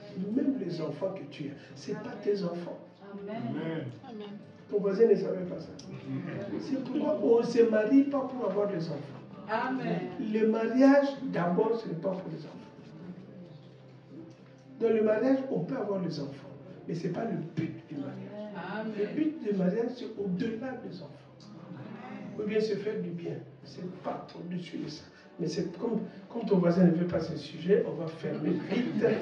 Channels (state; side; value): identical; both; correlation 1.00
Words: Même les enfants que tu as, ce n'est pas tes enfants. Amen. Ton voisin ne savait pas ça. C'est pourquoi on ne se marie pas pour avoir des enfants. Amen. Le mariage, d'abord, ce n'est pas pour les enfants. Dans le mariage, on peut avoir les enfants, mais ce n'est pas le but du mariage. Amen. Le but du mariage, c'est au-delà des enfants. Ou bien se faire du bien. Ce n'est pas au-dessus de ça. Mais c'est comme ton voisin ne veut pas ce sujet, on va fermer vite,